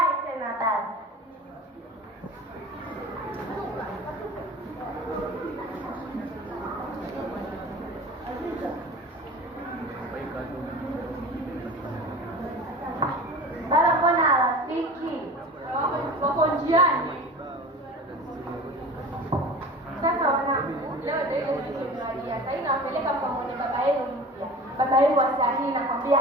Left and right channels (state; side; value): normal; both; correlation 0.37